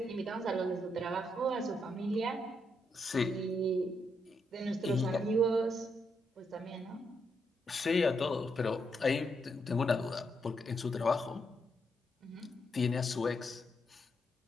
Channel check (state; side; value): normal; both; correlation 0.79